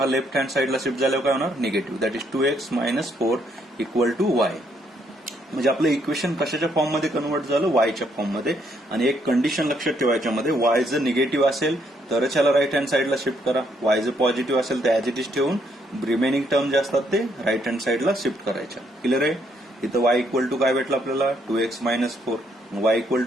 हा लेफ्ट हँड साईडला शिफ्ट झाल्यावर काय होणार, negative. That is 2x - 4 equal to y. म्हणजे आपलं इक्वेशन कशाच्या फॉर्ममध्ये कन्वर्ट झालं, वायच्या फॉर्ममध्ये. आणि एक कंडिशन लक्षात ठेवायच्या मध्ये, वाय जर निगेटिव्ह असेल तरच याला राईट हँड साईडला शिफ्ट करा. वाय जर पॉझिटिव्ह असेल तर ऍज इट इज ठेवून रिमेनिंग टर्म जे असतात ते राईट हँड साईडला शिफ्ट करायच्या. क्लिअर आहे. इथं वाय इक्वल टू काय भेटलं आपल्याला, 2x - 4. वाय इक्वल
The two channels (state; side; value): normal; both; correlation 0.72